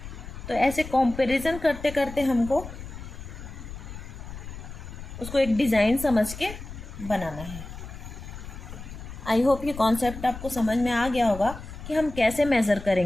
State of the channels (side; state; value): left; noise; rumble, 12 dB below the sound